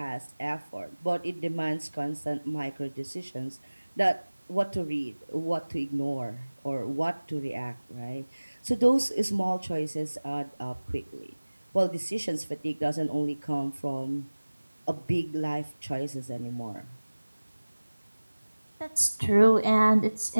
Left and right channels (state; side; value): inverted; both; correlation -1.00